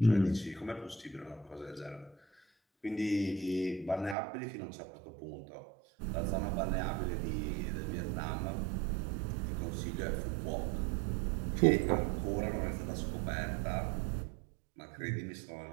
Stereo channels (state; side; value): drops out; left; at 4.2 s